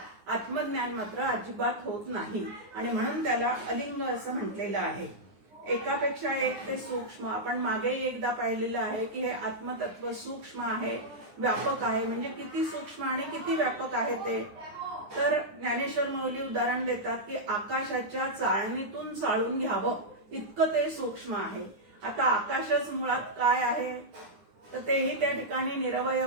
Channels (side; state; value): left; late; 9.6 ms